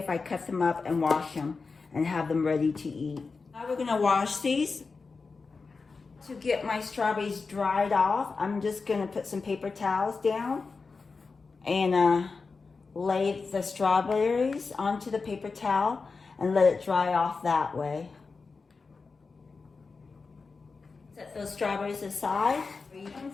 I cut them up and wash them and have them ready to eat. Now we're gonna wash these. To get my strawberries dried off, I'm just gonna put some paper towels down and lay the strawberries onto the paper towel and let it dry off that way. Set those strawberries aside. Same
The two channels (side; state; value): right; quieter; 4.4 dB